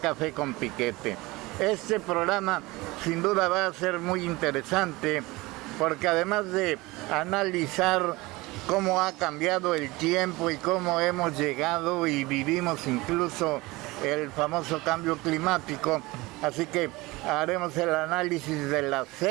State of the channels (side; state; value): left; quieter; 21.7 dB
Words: Café con Piquete. Este programa sin duda va a ser muy interesante porque además de analizar cómo ha cambiado el tiempo y cómo hemos llegado y vivimos incluso el famoso cambio climático, así que haremos el análisis de las